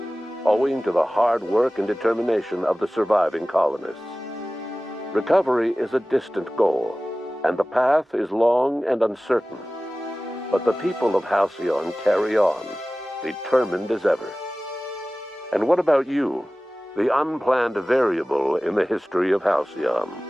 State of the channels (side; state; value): both; normal; correlation 0.97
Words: owing to the hard work and determination of the surviving colonists. Recovery is a distant goal, and the path is long and uncertain. But the people of Halcyon carry on, determined as ever. And what about you, the unplanned variable in the history of Halcyon?